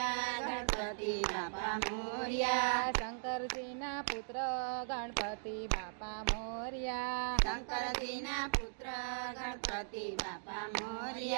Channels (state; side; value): silent; left; digital silence